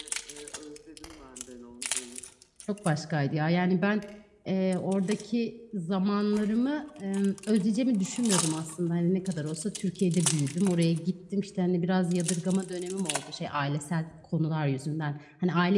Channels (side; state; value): both; identical; correlation 1.00